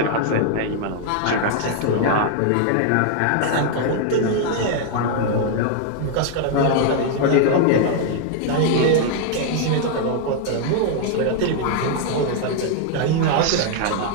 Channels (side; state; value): both; different; correlation 0.00